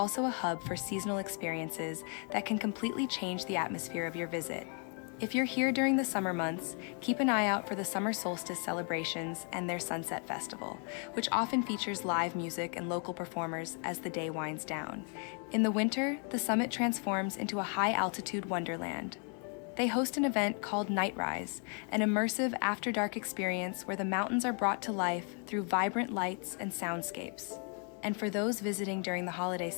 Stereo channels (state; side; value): quieter; right; 40.0 dB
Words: a hub for seasonal experiences that can completely change the atmosphere of your visit. If you're here during the summer months, keep an eye out for the summer solstice celebrations and their Sunset Festival, which often features live music and local performers as the day winds down. In the winter, the Summit transforms into a high-altitude wonderland. They host an event called Night Rise, an immersive after-dark experience where the mountains are brought to life through vibrant lights and soundscapes. And for those visiting during the holiday